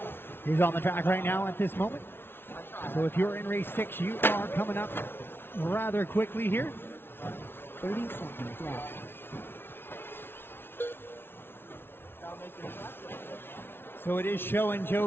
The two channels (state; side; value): late; right; 0.11 ms